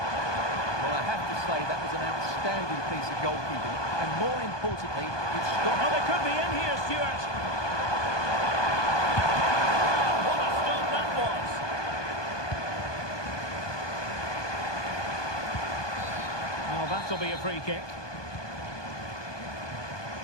Well, I have to say that was an outstanding piece of goalkeeping. And more importantly, it stopped... Oh, they could be in here, Stuart. Oh, what a stop that was. Oh, that'll be a free kick.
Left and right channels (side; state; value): right; late; 1.2 ms